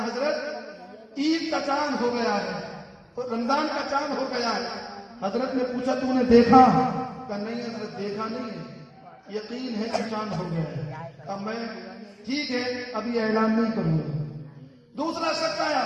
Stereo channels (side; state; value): both; identical; correlation 1.00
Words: حضرت عید کا چاند ہو گیا ہے, رمضان کا چاند ہو گیا ہے. حضرت نے پوچھا تو نے دیکھا؟ کہا نہیں حضرت دیکھا نہیں ہے, یقین ہے کہ چاند ہو گیا ہے. اب میں ٹھیک ہے ابھی اعلان نہیں کروں گا. دوسرا شخص آیا,